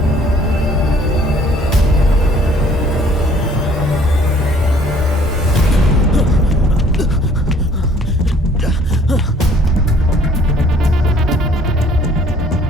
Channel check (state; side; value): normal; both; correlation 0.58